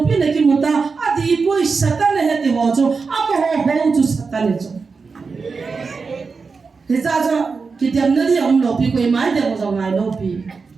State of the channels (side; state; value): left; quieter; 4.8 dB